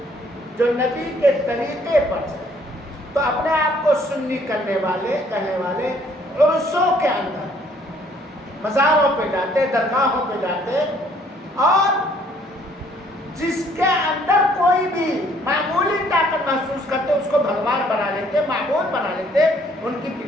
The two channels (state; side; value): normal; both; correlation 0.62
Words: جو نبی کے طریقے پر چلے۔ تو اپنے آپ کو سنی کہنے والے عرصوں کے اندر مزاروں پہ جاتے، درگاہوں پہ جاتے، اور جس کے اندر کوئی بھی معمولی طاقت محسوس کرتے اس کو بھگوان بنا لیتے، معبود بنا لیتے۔ ان کی